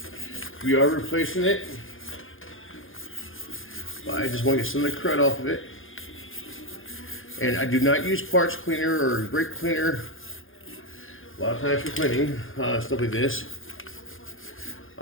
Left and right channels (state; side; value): late; right; 0.59 ms